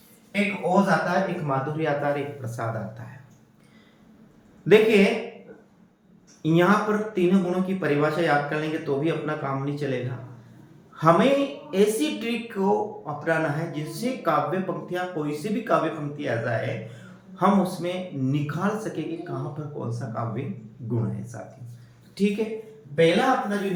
एक ओज आता है, एक माधुर्य आता है, एक प्रसाद आता है। देखिए यहां पर तीनों गुणों की परिभाषा याद कर लेंगे तो भी अपना काम नहीं चलेगा। हमें ऐसी ट्रिक को अपनाना है जिससे काव्य पंक्तियां, कोई सी भी काव्य पंक्ति आ जाए हम उसमें निकाल सके कि कहां पर कौन सा काव्य गुण है साथियों। ठीक है, पहला अपना जो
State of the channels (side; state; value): both; identical; correlation 1.00